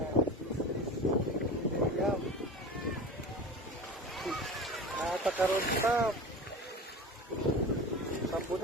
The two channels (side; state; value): both; normal; correlation 0.32